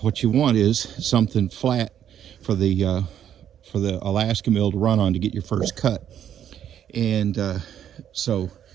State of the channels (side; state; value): left; quieter; 9.9 dB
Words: What you want is something flat for the Alaskan mill to run on to get your first cut. And so